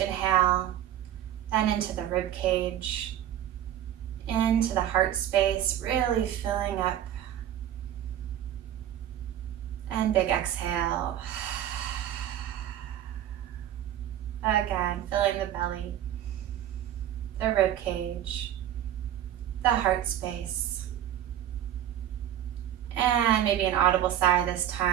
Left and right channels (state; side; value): quieter; left; 11.3 dB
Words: then into the rib cage, into the heart space, really filling up. And big exhale. Again, filling the belly, the rib cage, the heart space. And maybe an audible sigh this